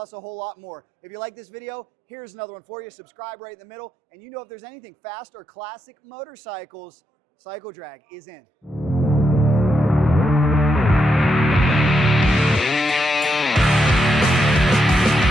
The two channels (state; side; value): normal; both; correlation 0.82